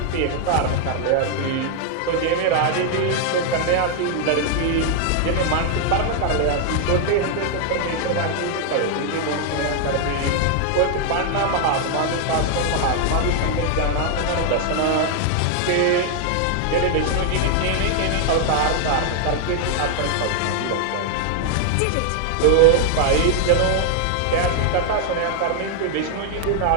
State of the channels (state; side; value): different; both; correlation 0.00